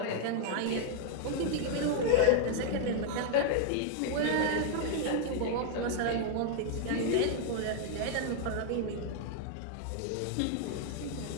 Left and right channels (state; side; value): different; both; correlation 0.00